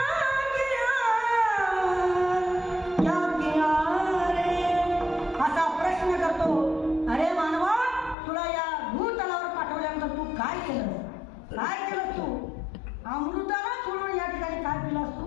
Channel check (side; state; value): right; drops out; at 8.2 s